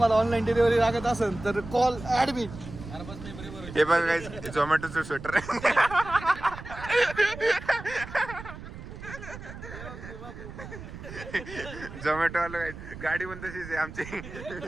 ऑनलाईन डिलिव्हरी लागत असेल तर कॉल ऍडमिट. हे बघा गाईज झोमॅटोचं स्वेटर आहे. झोमॅटो वाला गाडी पण तशीच आहे आमची.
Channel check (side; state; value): right; noise; rumble, 12 dB below the sound